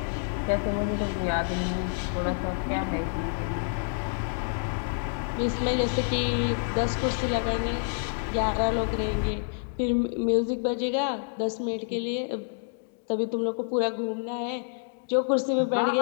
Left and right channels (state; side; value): silent; right; digital silence